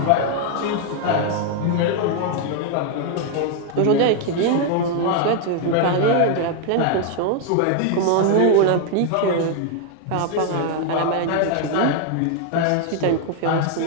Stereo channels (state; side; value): different; both; correlation 0.00